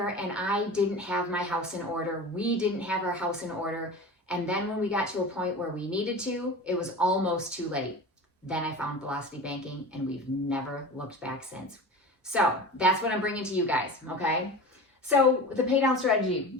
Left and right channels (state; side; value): normal; both; correlation 0.32